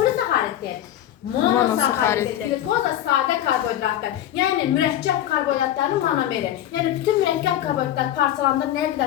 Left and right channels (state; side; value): quieter; right; 12.1 dB